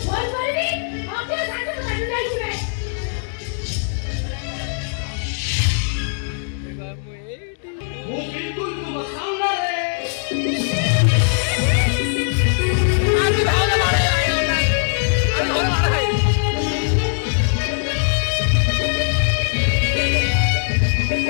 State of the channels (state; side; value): silent; right; digital silence